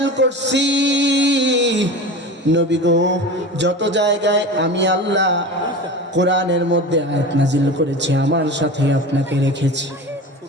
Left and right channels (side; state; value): both; normal; correlation 0.32